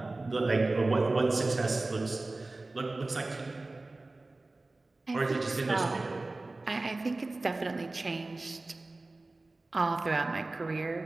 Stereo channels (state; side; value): quieter; left; 3.1 dB